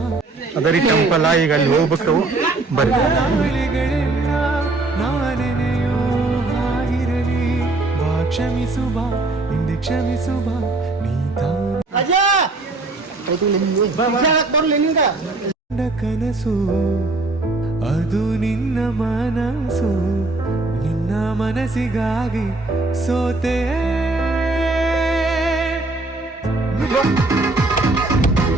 ಅದರಿ ಟೆಂಪಲ್ ಈಗ ಅಲ್ಲಿ ಹೋಗ್ಬೇಕು. ಬರ್ರಿ. ನಾಳೆಗಳೆಲ್ಲ ನಾನೆನೆಯೋ ಆಗಿರಲಿ. ಬಾ ಕ್ಷಮಿಸು ಬಾ ಹಿಂದೆ ಕ್ಷಮಿಸು ಬಾ. ನೀ ಕನಸು ಅದು ನಿನ್ನ ಮನಸ್ಸು. ನಿನ್ನ ಮನಸ್ಸಿಗಾಗಿ ಸೋತೆ.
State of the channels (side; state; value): left; quieter; 3.1 dB